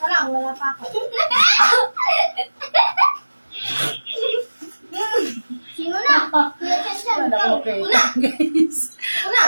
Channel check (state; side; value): inverted; both; correlation -1.00